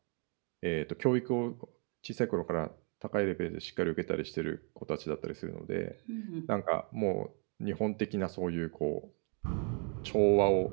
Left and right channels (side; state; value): left; quieter; 39.5 dB